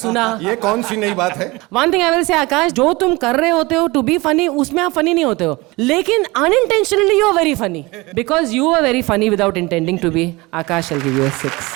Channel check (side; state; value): left; quieter; 23.0 dB